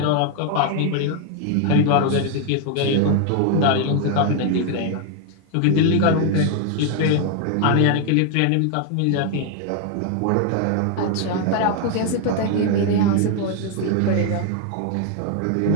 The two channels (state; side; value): different; both; correlation 0.01